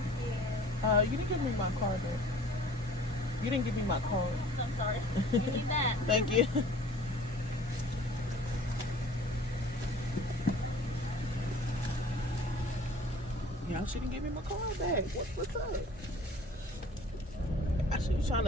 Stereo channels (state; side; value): normal; both; correlation 0.49